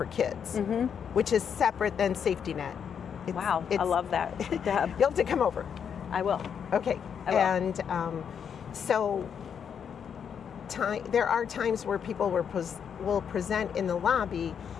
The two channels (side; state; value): right; quieter; 7.6 dB